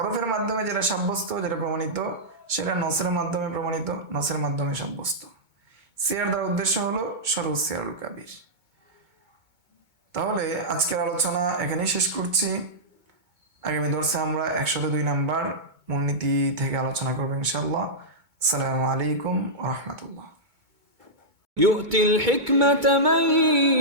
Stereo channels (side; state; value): left; late; 2.2 ms